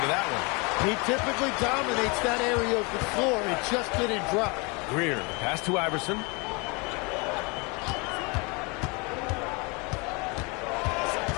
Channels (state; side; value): quieter; right; 29.4 dB